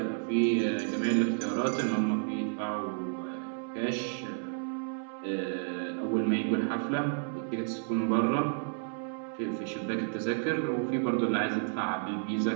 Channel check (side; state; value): left; silent; 57 dB below the other